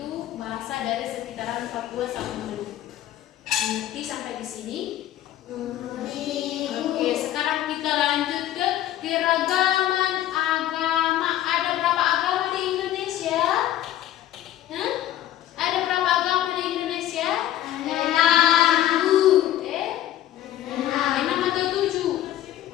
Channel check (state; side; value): quieter; right; 12.8 dB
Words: bahasa dari sekitaran Papua sama Maluku. Nanti sampai di sini. Oke, sekarang kita lanjut ke keragaman agama. Ada berapa agama di Indonesia? Ada berapa agama di Indonesia? 6 atau 7?